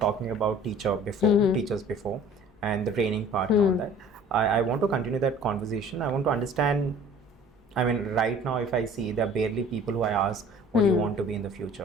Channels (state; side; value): normal; both; correlation 0.49